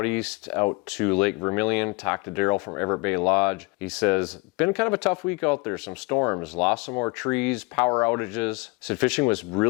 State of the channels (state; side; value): quieter; right; 27.5 dB